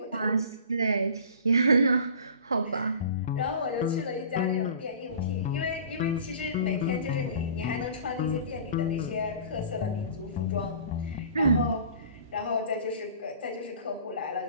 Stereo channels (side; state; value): both; inverted; correlation -0.43